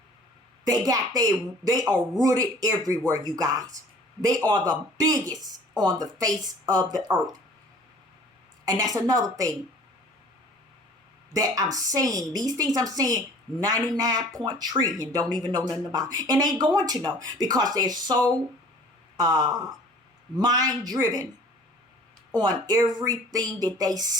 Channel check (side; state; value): both; normal; correlation 0.49